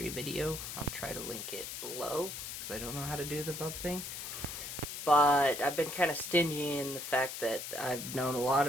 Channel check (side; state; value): left; noise; hiss, 7 dB below the sound